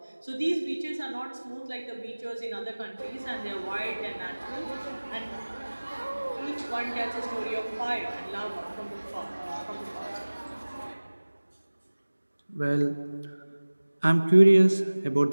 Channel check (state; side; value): inverted; both; correlation -1.00